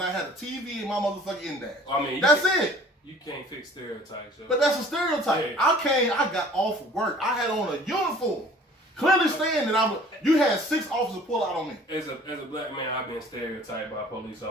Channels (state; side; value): normal; both; correlation 0.50